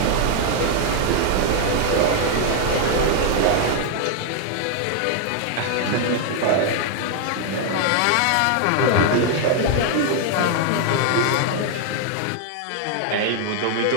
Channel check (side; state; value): both; different; correlation 0.00